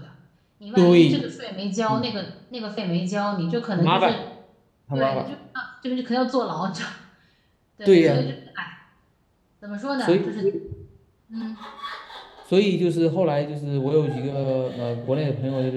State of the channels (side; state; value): both; identical; correlation 1.00